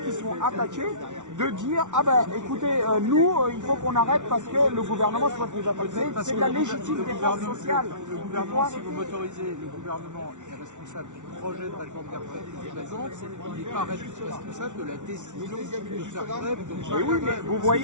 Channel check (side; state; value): left; late; 0.85 ms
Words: sont attaqués de dire ah ben écoutez nous il faut qu'on arrête parce que le gouvernement soit nous attaquer. C'est de la légitime défense sociale. Le gouvernement, si vous m'autorisez, le gouvernement est responsable du projet de réforme des retraites qu'il présente, il n'est pas responsable de la décision de faire grève. Oui, mais vous